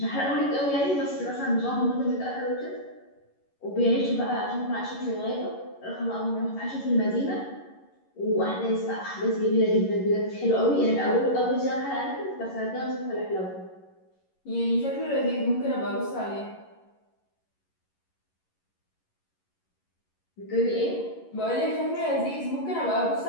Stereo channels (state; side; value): late; right; 11 ms